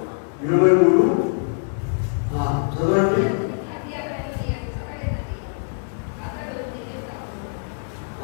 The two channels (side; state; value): right; silent; 63 dB below the other